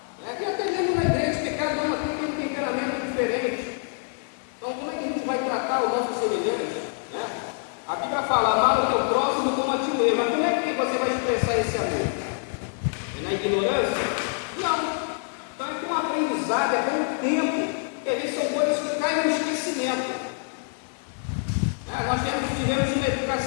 E até mesmo na igreja, que cada uma tem um temperamento diferente. Então, como é que a gente vai tratar o nosso semelhante? A Bíblia fala, amar o teu próximo como a ti mesmo. Mas como é que você vai expressar esse amor? É na ignorância? Não. Então, é com um aprendizado, é com um tempo, que às vezes são coisas que caem no esquecimento. Nós tivemos uma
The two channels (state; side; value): silent; right; 56 dB below the other